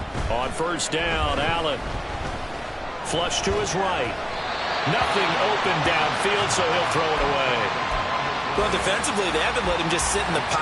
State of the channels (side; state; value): both; identical; correlation 1.00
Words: On first down, Allen. Flush to his right. Nothing open downfield, so he'll throw it away. Well, defensively, they haven't let him just sit in the